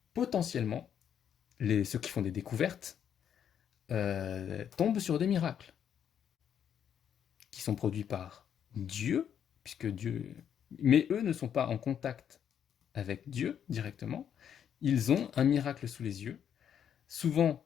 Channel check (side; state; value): right; quieter; 8.8 dB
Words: potentiellement, ceux qui font des découvertes, tombent sur des miracles qui sont produits par Dieu, puisque Dieu... Mais eux ne sont pas en contact avec Dieu directement. Ils ont un miracle sous les yeux. Souvent,